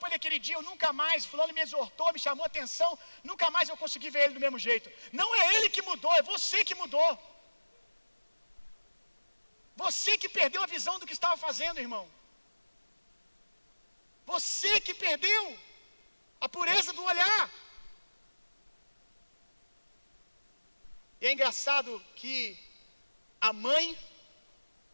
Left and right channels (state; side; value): inverted; both; correlation -1.00